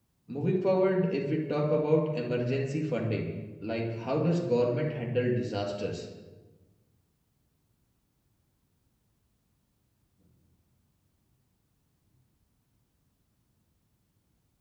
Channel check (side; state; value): both; identical; correlation 1.00